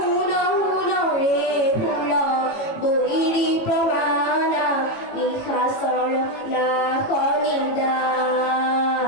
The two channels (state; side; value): late; right; 18 ms